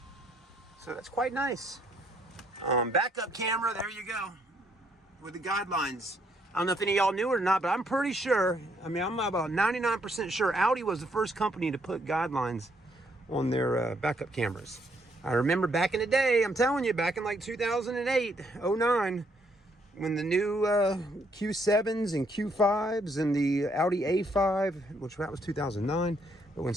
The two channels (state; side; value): normal; both; correlation 0.71